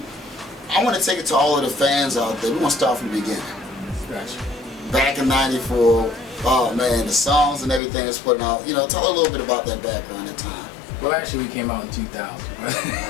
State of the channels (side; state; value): right; drops out; at 7.8 s